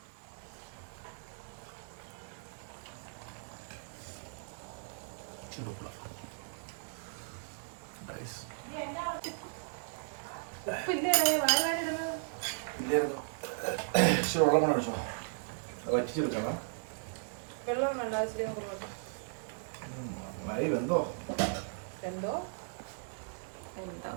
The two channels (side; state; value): left; silent; 54 dB below the other